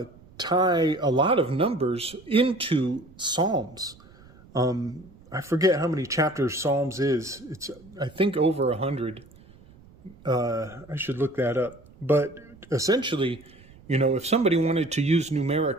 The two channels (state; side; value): noise; right; rumble, 24 dB below the sound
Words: tie a lot of numbers into Psalms. I forget how many chapters Psalms is. It's, I think, over 100. I should look that up. But essentially, if somebody wanted to use